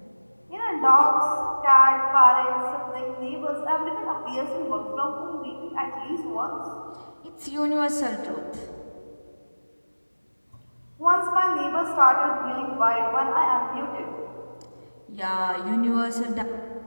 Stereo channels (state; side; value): inverted; both; correlation -1.00